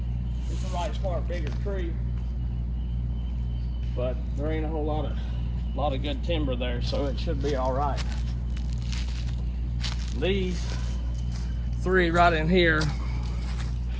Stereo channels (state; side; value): identical; both; correlation 1.00